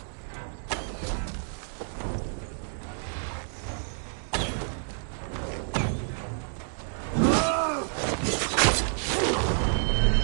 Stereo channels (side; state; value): left; silent; digital silence